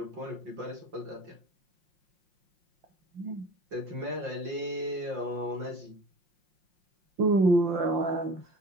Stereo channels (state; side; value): late; left; 5.7 ms